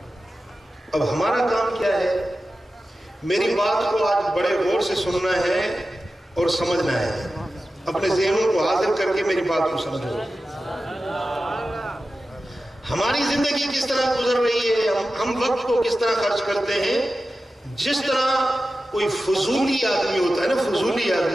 اب ہمارا کام کیا ہے؟ میری بات کو آج بڑے غور سے سننا ہے اور سمجھنا ہے، اپنے ذہنوں کو حاضر کر کے میری بات کو سمجھو۔ ہماری زندگی کس طرح گزر رہی ہے، ہم وقت کو کس طرح خرچ کرتے ہیں؟ جس طرح کوئی فضولی آدمی ہوتا ہے نا، فضولی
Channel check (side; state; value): both; normal; correlation 0.93